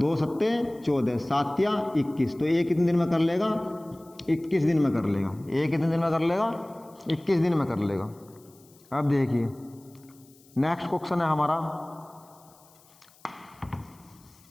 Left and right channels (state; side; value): noise; left; hiss, 28 dB below the sound